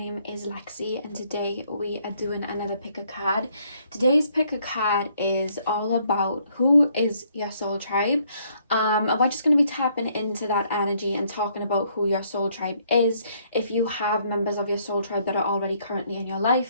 is Lexi and today we are doing another pick a card. Today's pick a card is all about who is your soul tribe. And we're just going to be tapping into that energy and talking about who your soul tribe is, if you have members of your soul tribe that are already currently in your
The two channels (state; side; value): inverted; both; correlation -0.68